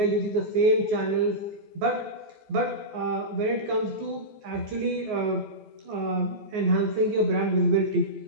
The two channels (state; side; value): late; left; 14 ms